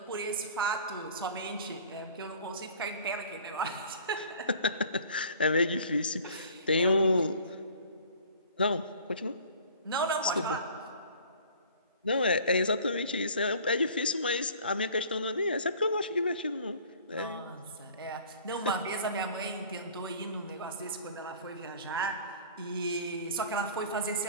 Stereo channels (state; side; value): inverted; both; correlation -0.48